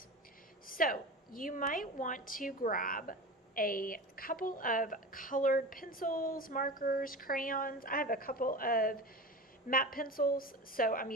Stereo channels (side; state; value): both; normal; correlation 0.30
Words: So you might want to grab a couple of colored pencils, markers, crayons. I have a couple of matte pencils, so I'm